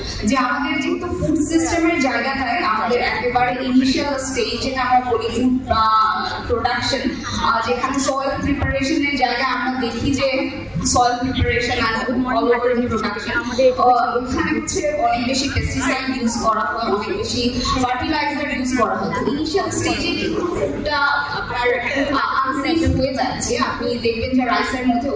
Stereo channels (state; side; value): identical; both; correlation 1.00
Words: যে আমাদের যেহেতু ফুড সিস্টেমের জায়গাটায় আমাদের একেবারে ইনিশিয়াল স্টেজ যেটা আমরা বলি ফুড প্রোডাকশন, যেখানে সয়েল প্রিপারেশনের জায়গায় আমরা দেখি যে soil preparation and all over production ওখানে হচ্ছে অনেক বেশি পেস্টিসাইড ইউজ করা হয়, অনেক বেশি ফার্টিলাইজার ইউজ করা হয়। তো ইনিশিয়াল স্টেজে কিন্তু ফুডটা আপনার আনসেফ হয়ে যাচ্ছে। আপনি দেখবেন যে রাইসের মধ্যে